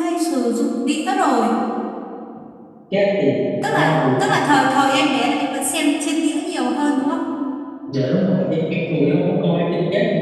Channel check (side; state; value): both; identical; correlation 1.00